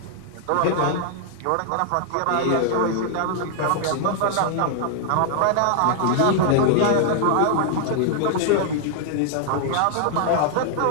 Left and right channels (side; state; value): both; different; correlation -0.01